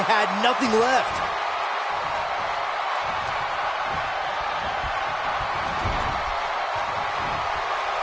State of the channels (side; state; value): both; identical; correlation 1.00